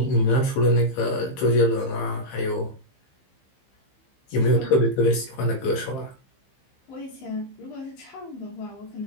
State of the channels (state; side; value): late; right; 15 ms